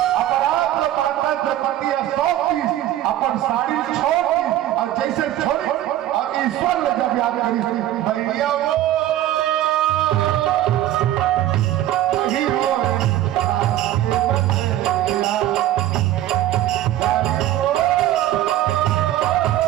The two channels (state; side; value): quieter; left; 13.3 dB